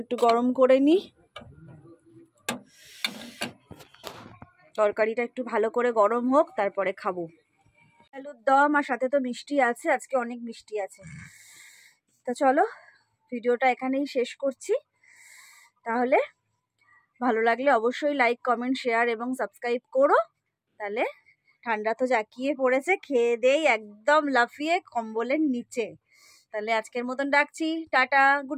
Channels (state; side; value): identical; both; correlation 1.00